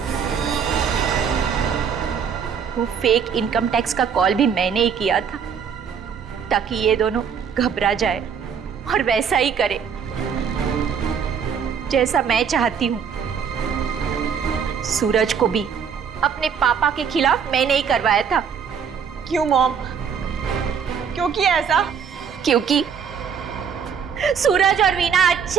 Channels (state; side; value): quieter; left; 7.1 dB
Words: वो फेक इनकम टैक्स का कॉल भी मैंने ही किया था ताकि ये दोनों घबरा जाए और वैसा ही करे जैसा मैं चाहती हूं। सूरज को भी अपने पापा के खिलाफ मैंने ही करवाया था। क्यों मॉम? क्यों किया ऐसा? क्योंकि सूरज और वीना